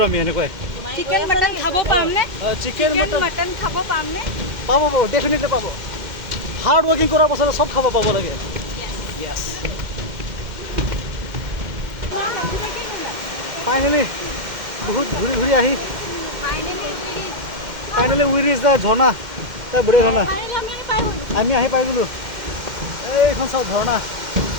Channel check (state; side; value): late; left; 2.1 ms